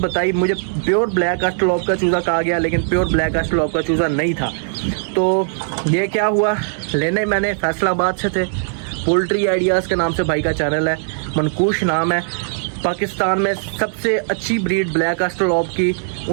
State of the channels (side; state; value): left; silent; digital silence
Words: मुझे प्योर ब्लैक ऑस्ट्रेलोप का चूज़ा कहा गया, लेकिन प्योर ब्लैक ऑस्ट्रेलोप का चूज़ा नहीं था। तो ये क्या हुआ, लेने मैंने फैसलाबाद से थे, पोल्ट्री आइडियाज़ के नाम से भाई का चैनल है, मनकूश नाम है। पाकिस्तान में सबसे अच्छी ब्रीड ब्लैक ऑस्ट्रेलोप की